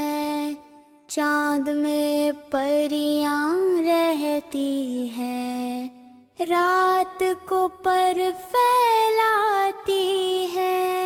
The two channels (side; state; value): both; identical; correlation 1.00